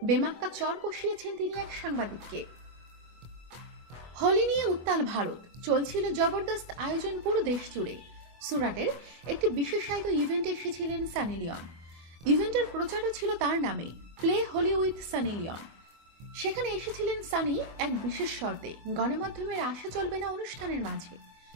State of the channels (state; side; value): late; left; 24 ms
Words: বেমাক্কা চর কষিয়েছেন তিনি এক সাংবাদিককে। হোলি নিয়ে উত্তাল ভারত, চলছিল জবরদস্ত আয়োজন পুরো দেশ জুড়ে। সুরাটের একটি বিশেষায়িত ইভেন্টে এসেছিলেন সানি লিওন। ইভেন্টের প্রচারও ছিল তার নামে, play Holi with Sunny Leone. সেখানে এসেছিলেন সানি এক বিশেষ শর্তে, গণমাধ্যমের আশা চলবে না অনুষ্ঠানের মাঝে।